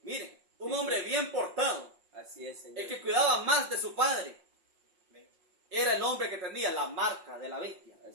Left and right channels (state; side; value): late; left; 5.6 ms